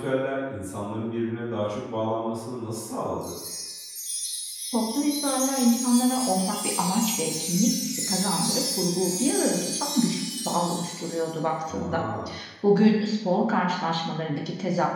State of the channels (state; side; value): identical; both; correlation 1.00